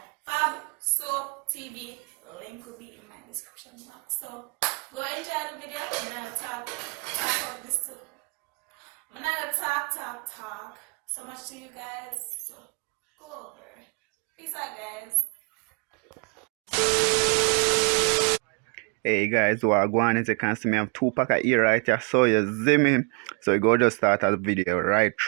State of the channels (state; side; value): quieter; left; 35.4 dB